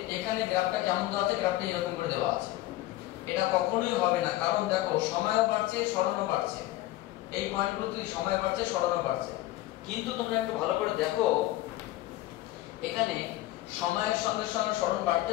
এখানে গ্রাফটা কেমন দেওয়া আছে? গ্রাফটা এরকম করে দেওয়া আছে। এটা কখনোই হবে না, কারণ দেখো সময়ও বাড়ছে সরণও বাড়ছে, এই পয়েন্টগুলোতে সময় বাড়ছে সরণও বাড়ছে। কিন্তু তোমরা একটু ভালো করে দেখো, এখানে সময়ের সঙ্গে সঙ্গে সরণ বাড়তে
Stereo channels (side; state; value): right; quieter; 16.5 dB